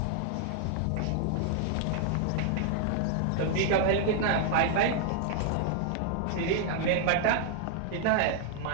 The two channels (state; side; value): different; both; correlation -0.01